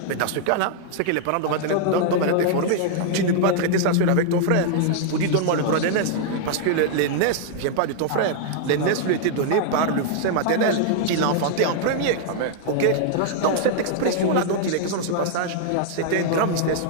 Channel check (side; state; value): both; different; correlation -0.01